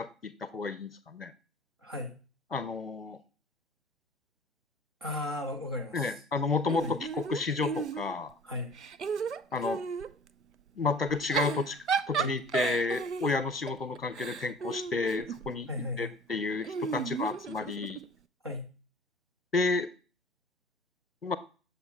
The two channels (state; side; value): normal; both; correlation 0.47